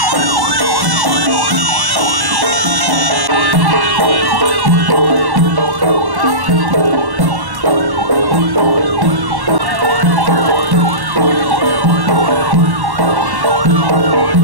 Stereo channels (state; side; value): late; left; 1.1 ms